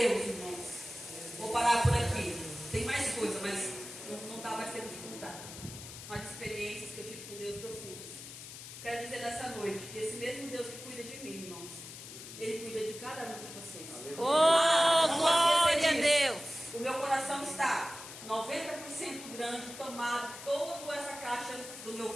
irmãos. Vou parar por aqui. Tem mais coisa, mas não dá mais tempo de contar. Umas experiências que eu tive com Deus profundas. Quero dizer nessa noite que esse mesmo Deus que cuida de mim, irmãos, Ele cuida de cada um de vocês. Oh, glória a Deus! O meu coração está 90% grande, tomado toda essa caixa do meu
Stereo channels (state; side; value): noise; left; hiss, 12 dB below the sound